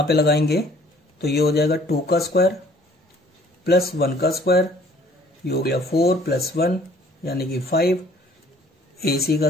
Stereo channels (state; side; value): normal; both; correlation 0.57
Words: पे लगाएंगे तो ये हो जाएगा 2 का स्क्वायर प्लस 1 का स्क्वायर, ये हो गया 4 प्लस 1 यानी कि 5, AC का